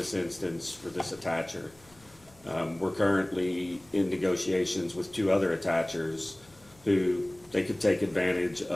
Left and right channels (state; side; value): noise; left; hum, 28 dB below the sound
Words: instance for this attacher. We're currently in negotiations with 2 other attachers who they could take advantage